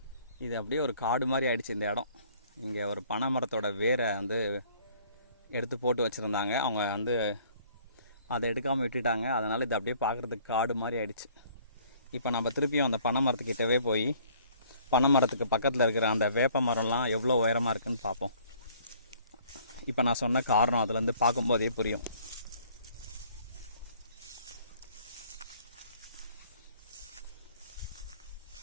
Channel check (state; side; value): inverted; both; correlation -0.57